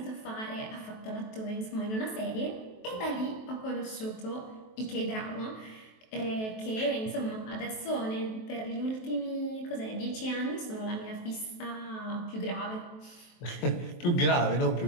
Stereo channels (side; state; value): right; late; 23 ms